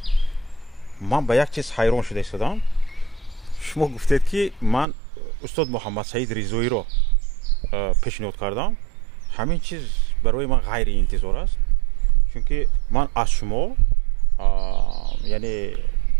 من به یک چیز حیران شده ایستادم. شما گفتید که من استاد محمد سعید رضایی رو پیشنهاد کردم. همین چیز برای من غیر انتظار است، چون که من از شما یعنی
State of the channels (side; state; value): left; drops out; at 4.9 s